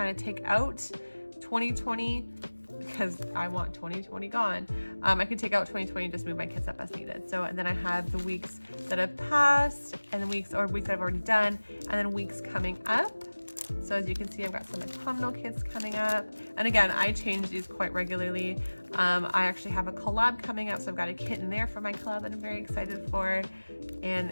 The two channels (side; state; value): both; inverted; correlation -1.00